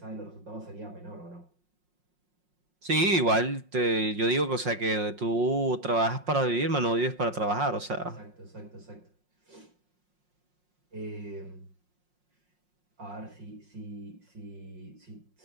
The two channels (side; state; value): left; late; 5.5 ms